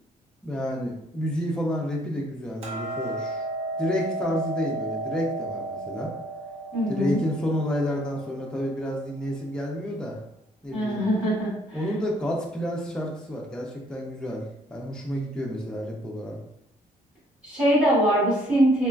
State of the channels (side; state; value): both; normal; correlation 0.63